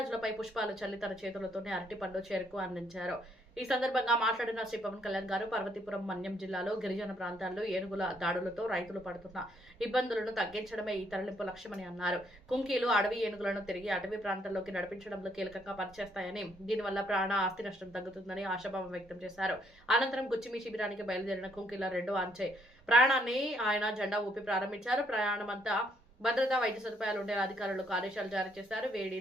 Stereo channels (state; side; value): normal; both; correlation 0.70